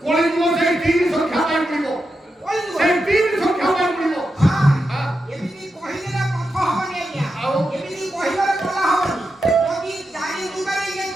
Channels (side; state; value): both; normal; correlation 0.88